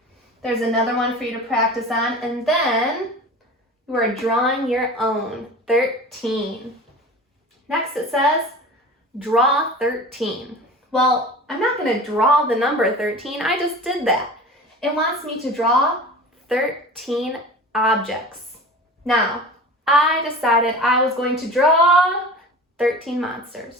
There's another one for you to practice on, and then you are drawing your own 13. Next it says, draw 13. Well, I'm not going to draw the number 13, I just did that. It wants me to draw 13 objects. Now, I decided I was going to draw 13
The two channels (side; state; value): both; normal; correlation 0.36